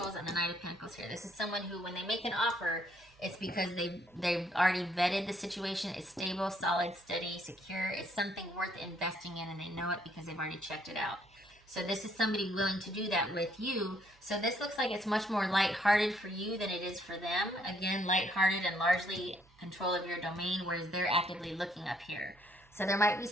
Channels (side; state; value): right; noise; hum, 29 dB below the sound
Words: and the Knight of Pentacles here. This is someone who, when they make an offer, it's because they've already vetted the situation. It's stable, solid, steady, secure. It's something worth investing in, and they know it because they've already checked it out. So this is somebody willing to do that with you. So this looks like it's much more lighthearted for you than it is for them. Again, lighthearted and largely control of your domain, whereas they're actively looking up here. So there might be